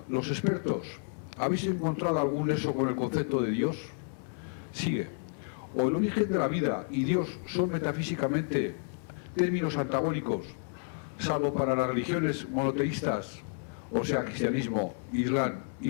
los expertos, ¿habéis encontrado algún nexo con el concepto de Dios? Sigue. O el origen de la vida y Dios son metafísicamente términos antagónicos, salvo para las religiones monoteístas, o sea, cristianismo, islam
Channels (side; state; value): right; silent; 57 dB below the other